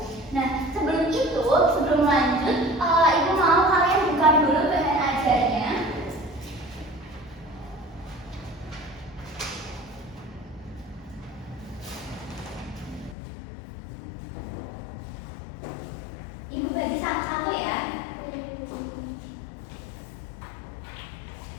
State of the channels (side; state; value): right; drops out; at 13.2 s